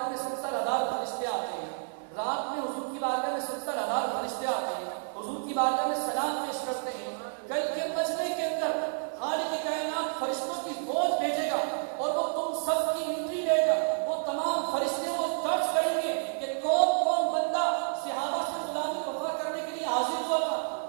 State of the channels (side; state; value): left; silent; digital silence